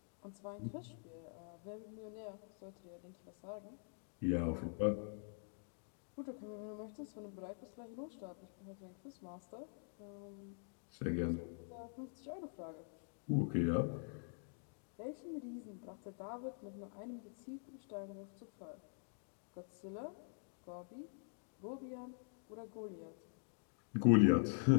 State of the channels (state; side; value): silent; right; digital silence